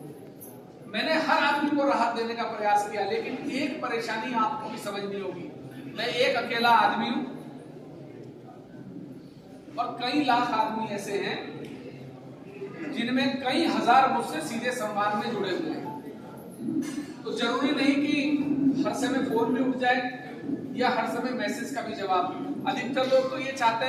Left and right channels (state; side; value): identical; both; correlation 1.00